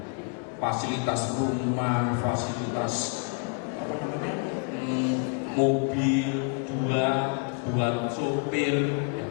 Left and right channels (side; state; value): right; quieter; 39.1 dB